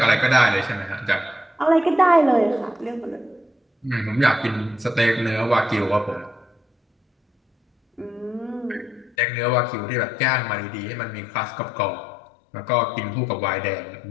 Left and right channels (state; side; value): drops out; right; at 9.2 s